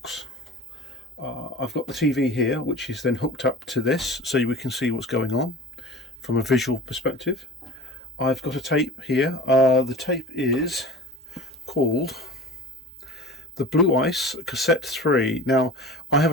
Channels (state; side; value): normal; both; correlation 0.37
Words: I've got the TV here, which is then hooked up to this, so we can see what's going on from a visual perspective. I've got a tape here. The tape is called the Blue Ice Cassette 3. Now, I have